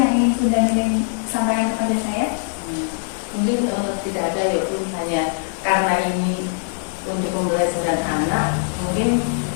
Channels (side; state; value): right; silent; 65 dB below the other